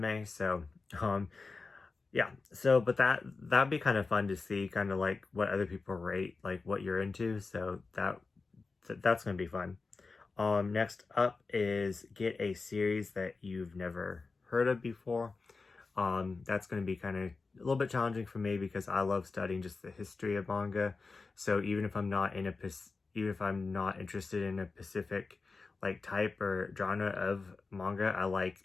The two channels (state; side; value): quieter; right; 4.1 dB